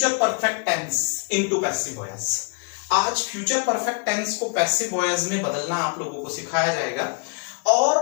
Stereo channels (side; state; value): right; quieter; 38.7 dB